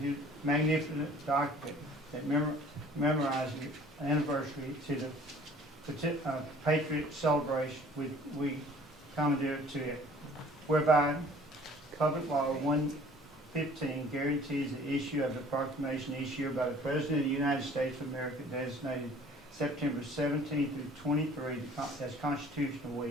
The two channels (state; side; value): normal; both; correlation 0.52